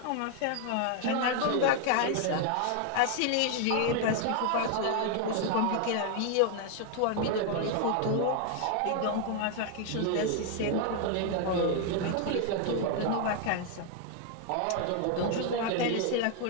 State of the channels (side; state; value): both; different; correlation 0.00